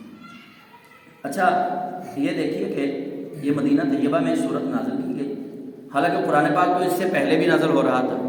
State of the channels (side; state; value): both; identical; correlation 1.00